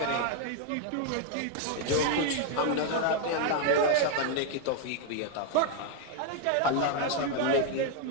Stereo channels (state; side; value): different; both; correlation 0.00